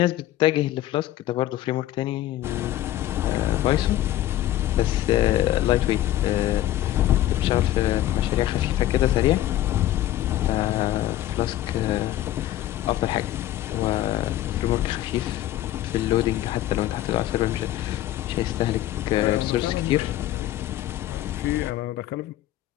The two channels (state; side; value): quieter; right; 13.8 dB